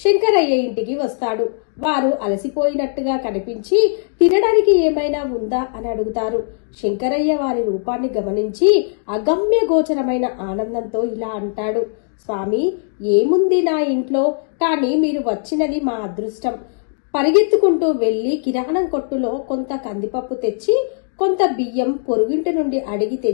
శంకరయ్య ఇంటికి వస్తాడు. వారు అలసిపోయినట్టుగా కనిపించి తినడానికి ఏమైనా ఉందా అని అడుగుతారు. శంకరయ్య వారి రూపాన్ని గమనించి అగమ్య గోచరమైన ఆనందంతో ఇలా అంటాడు. స్వామి, ఏముంది నా ఇంట్లో, కానీ మీరు వచ్చినది మా అదృష్టం. పరిగెత్తుకుంటూ వెళ్లి కిరాణం కొట్టులో కొంత కందిపప్పు తెచ్చి కొంత బియ్యం పొరుగింటి నుండి అడిగి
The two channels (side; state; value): right; silent; digital silence